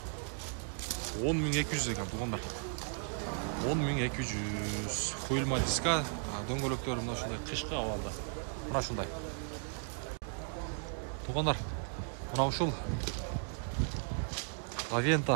10.200 ekan tuğanlar. 10.200 koyulma diska, döngölöktörü mына şunday kışkı avalda. Mına şunday. Tuğanlar, mına uşul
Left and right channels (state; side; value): silent; left; 54 dB below the other